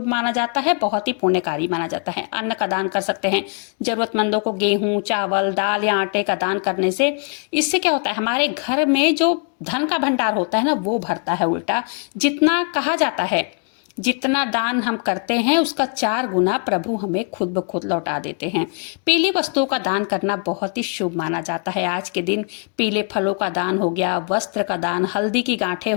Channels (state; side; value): quieter; right; 37.9 dB